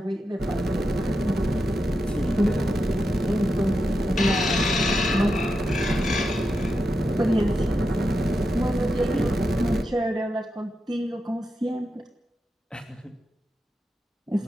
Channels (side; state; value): both; normal; correlation 0.88